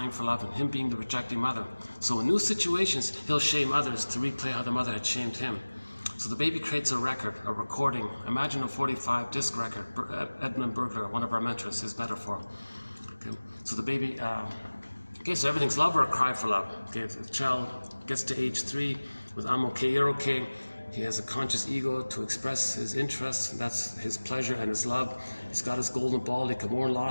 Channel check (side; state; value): both; inverted; correlation -1.00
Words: for love and him being the rejecting mother. So in new situations, he'll shame others to replay how the mother had shamed him. So the baby creates a record, a recording. Imagine a 45 disc record. Edmund Burglar, one of our mentors, his metaphor. Okay. So the baby, okay, so everything's love or a cry for love. Okay, the child gets to age 3 with I'm okay, you're okay. He has a conscious ego to express his interests. That's his pleasure and his love. He's got his golden ball. He can mourn